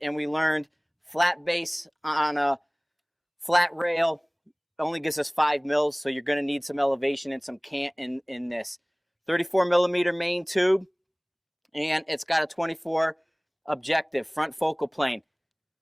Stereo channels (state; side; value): identical; both; correlation 1.00